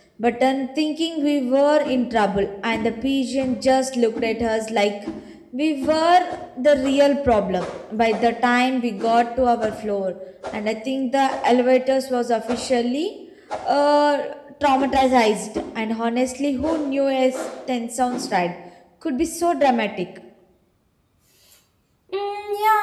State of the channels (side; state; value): both; identical; correlation 1.00